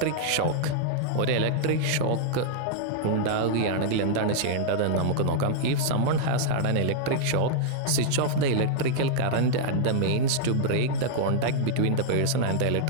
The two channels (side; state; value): both; different; correlation -0.01